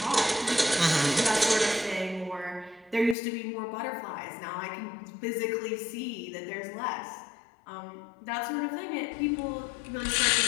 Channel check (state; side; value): drops out; right; at 3.2 s